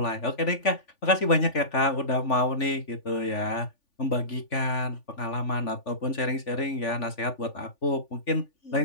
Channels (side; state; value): right; late; 3.5 ms